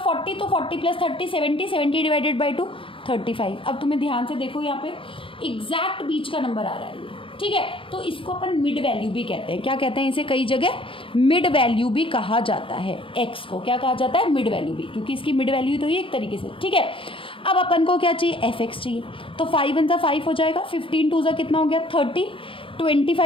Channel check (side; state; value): right; late; 0.26 ms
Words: तो 40 + 30 70, 70 डिवाइडेड बाई 2 35। अब तुम्हें ध्यान से देखो, यहाँ पे एग्जैक्ट बीच का नंबर आ रहा है ये। ठीक है, तो इसको अपन मिड वैल्यू भी कहते हैं। क्या कहते हैं इसे, कई जगह मिड वैल्यू भी कहा जाता है। एक्स को क्या कहा जाता है, मिड वैल्यू भी, क्योंकि इसकी मिड वैल्यू तो ये एक तरीके से। ठीक है, अब अपन को क्या चाहिए, एफ एक्स चाहिए, तो 5 1 = 5 हो जाएगा, 15 2 = कितना हो गया 30,